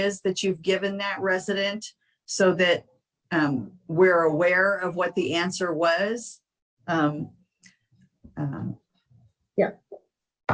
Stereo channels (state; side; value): identical; both; correlation 1.00